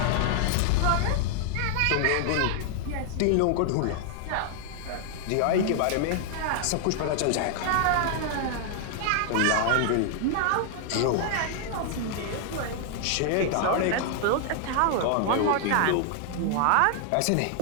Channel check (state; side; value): different; both; correlation 0.00